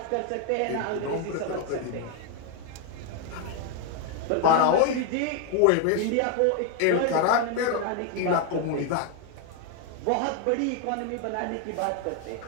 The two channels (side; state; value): both; different; correlation 0.01